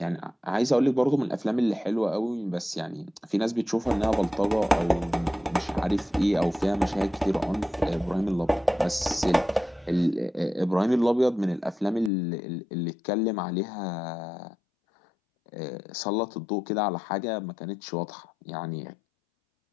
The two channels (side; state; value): right; drops out; at 12.1 s